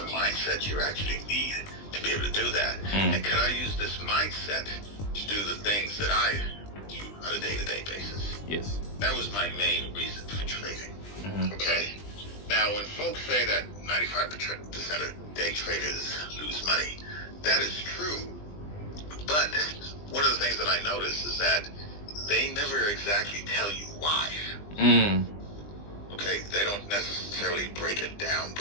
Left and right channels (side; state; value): right; late; 20 ms